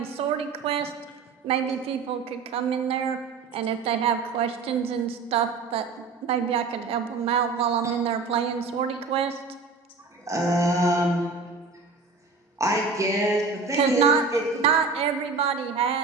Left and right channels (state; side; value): quieter; left; 4.5 dB